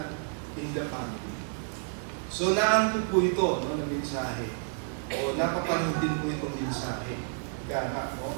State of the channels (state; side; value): silent; left; 58 dB below the other